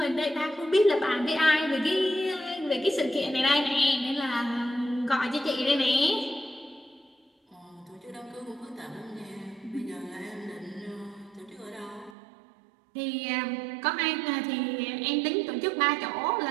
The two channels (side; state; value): left; drops out; at 12.2 s